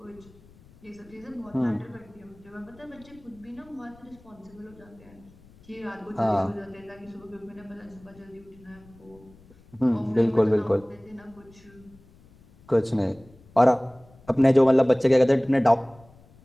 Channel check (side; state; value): left; noise; rumble, 26 dB below the sound